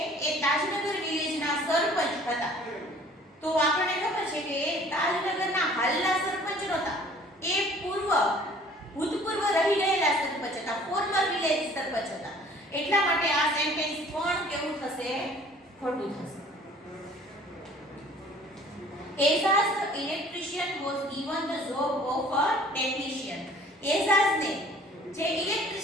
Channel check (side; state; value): both; normal; correlation 0.52